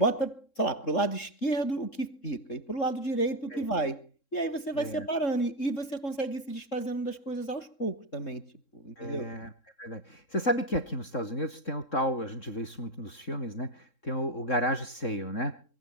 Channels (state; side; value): late; right; 3.7 ms